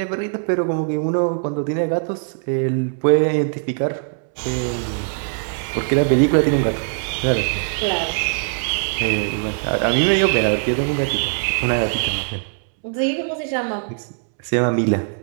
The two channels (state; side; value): silent; left; 65 dB below the other